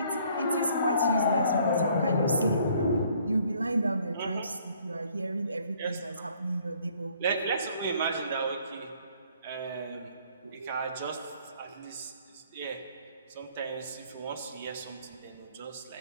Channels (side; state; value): both; inverted; correlation -0.61